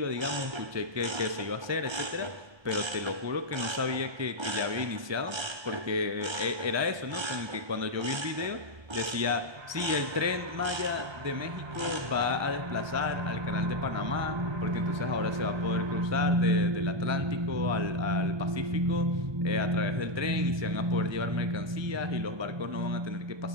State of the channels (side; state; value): left; late; 1.3 ms